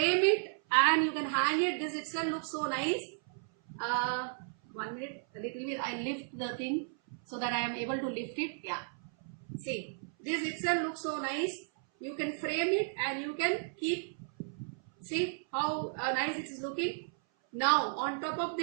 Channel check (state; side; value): silent; left; 55 dB below the other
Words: it and you can hang it. This itself looks so nice. 1 minute, a little bit. I lift the thing so that I am able to lift it. Yeah. See, this itself looks so nice. You can frame it and you can keep. See how nice it is looking. Now on top of